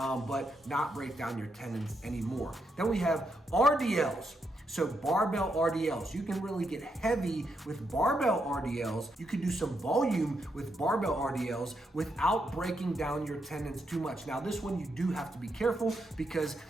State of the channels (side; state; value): both; normal; correlation 0.81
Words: not break down your tendons anymore. Then we have RDLs. So barbell RDLs, you can really get heavy with barbell RDLs. You can do some volume with barbell RDLs without breaking down your tendons too much. Now this one you do have to be careful, because